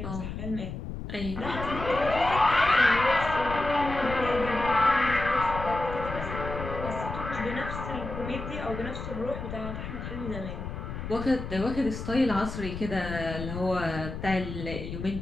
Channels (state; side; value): noise; left; rumble, 7 dB below the sound